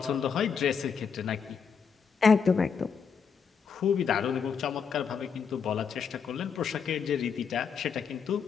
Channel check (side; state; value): right; quieter; 6.4 dB